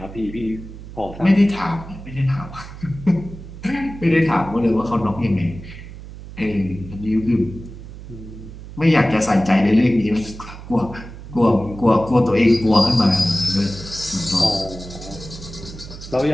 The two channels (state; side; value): noise; right; hum, 14 dB below the sound